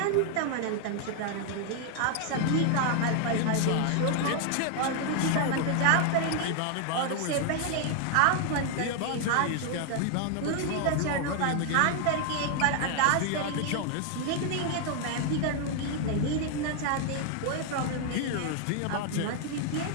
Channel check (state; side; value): different; both; correlation 0.00